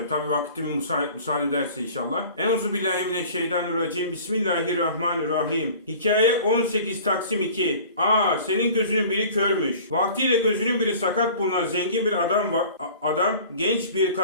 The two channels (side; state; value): both; inverted; correlation -0.45